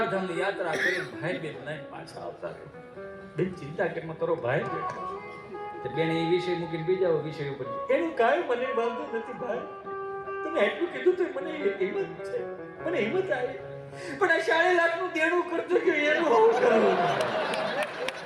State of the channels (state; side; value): identical; both; correlation 1.00